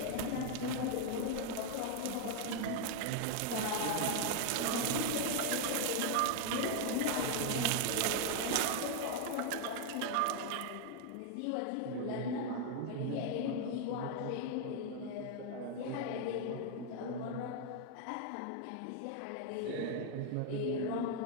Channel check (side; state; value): both; different; correlation 0.00